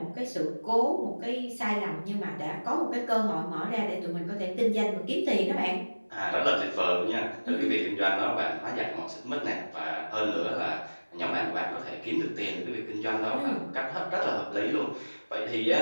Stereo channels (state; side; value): inverted; both; correlation -1.00